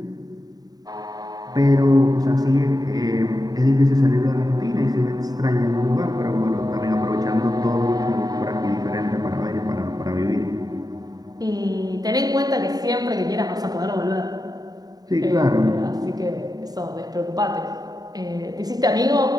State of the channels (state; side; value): late; left; 0.18 ms